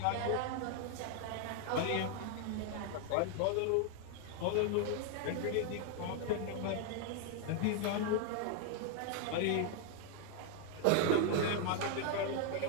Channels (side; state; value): both; different; correlation 0.00